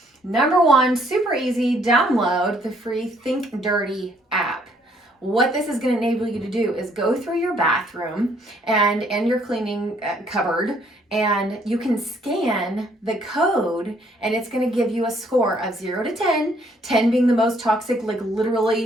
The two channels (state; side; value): normal; both; correlation 0.66